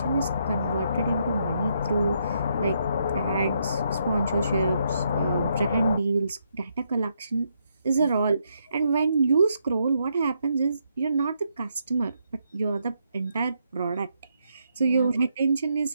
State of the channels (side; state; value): both; inverted; correlation -0.77